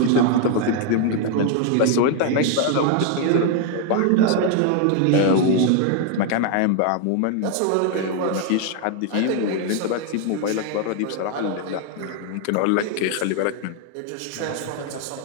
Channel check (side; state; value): both; different; correlation 0.00